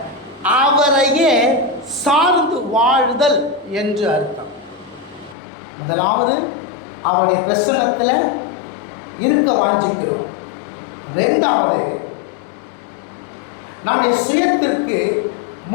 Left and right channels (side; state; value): right; drops out; at 5.4 s